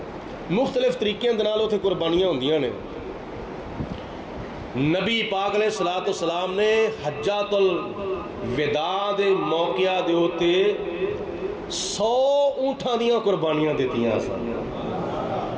مختلف طریقے دے نال اتنے قربانیاں ہوندیاں نے. نبی پاک علیہ السلام نے حجۃ الوداع دے موقع دے ہوتے 100 اونٹاں دیاں قربانیاں دیتیاں سن.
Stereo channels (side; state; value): both; identical; correlation 1.00